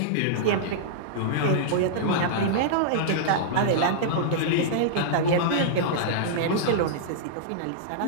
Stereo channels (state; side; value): different; both; correlation -0.02